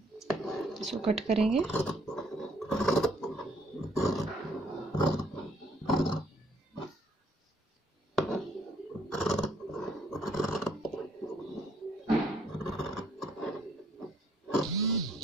इसको कट करेंगे।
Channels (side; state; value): both; normal; correlation 0.65